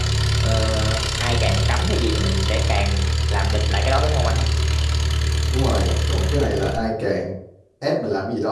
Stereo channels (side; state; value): both; identical; correlation 1.00